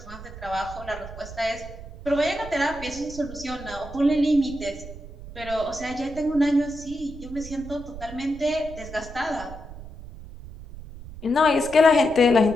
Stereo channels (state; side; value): noise; right; rumble, 14 dB below the sound